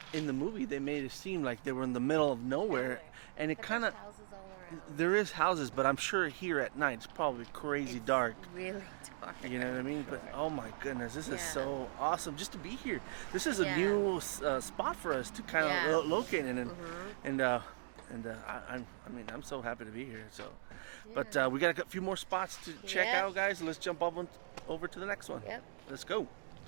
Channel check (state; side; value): silent; left; digital silence